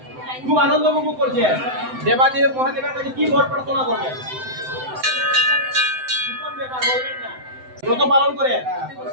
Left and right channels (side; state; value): left; late; 7.8 ms